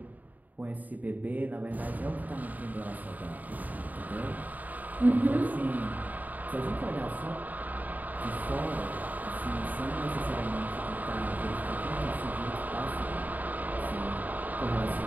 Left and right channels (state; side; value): late; left; 0.080 ms